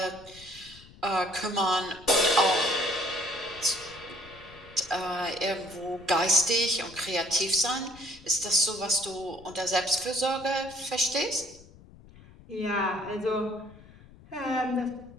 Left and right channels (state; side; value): noise; left; rumble, 22 dB below the sound